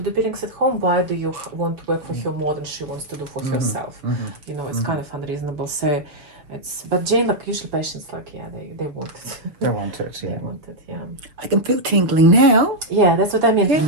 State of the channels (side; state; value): left; late; 6.4 ms